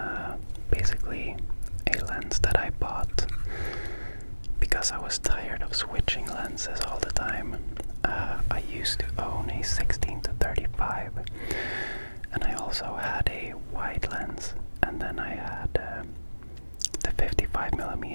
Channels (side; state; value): both; inverted; correlation -1.00